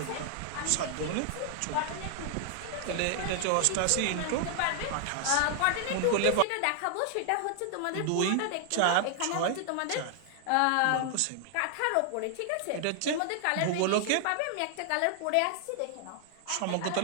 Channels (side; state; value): both; different; correlation 0.00